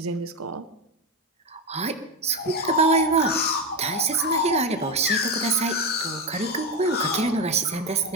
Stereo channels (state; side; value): normal; both; correlation 0.14